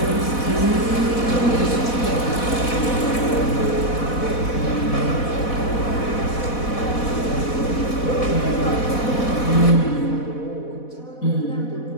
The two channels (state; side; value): late; right; 4.1 ms